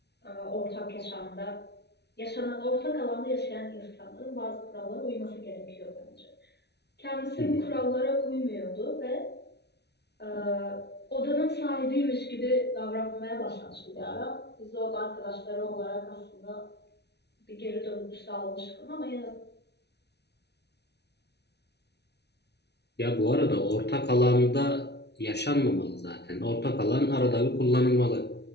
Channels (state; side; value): late; right; 0.49 ms